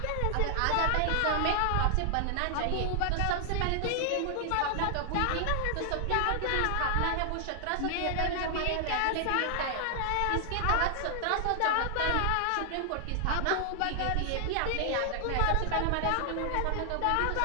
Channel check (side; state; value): both; different; correlation 0.00